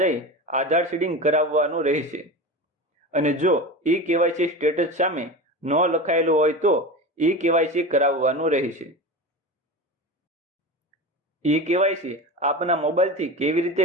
આધાર સીડિંગ કરાવવાનું રહેશે. અને જો ઈ-કેવાયસી સ્ટેટસ સામે નો લખાયેલું હોય તો ઈ-કેવાયસી કરાવવાનું રહેશે. ઈ-કેવાયસી આપના મોબાઈલથી કેવી રીતે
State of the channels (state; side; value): normal; both; correlation 0.27